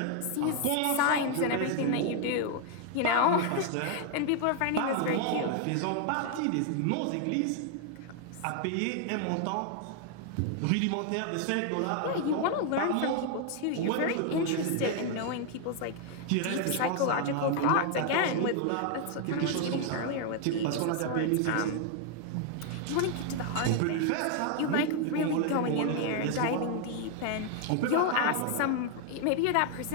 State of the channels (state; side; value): different; both; correlation 0.00